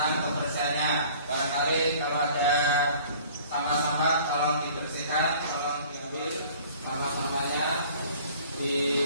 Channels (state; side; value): inverted; both; correlation -0.50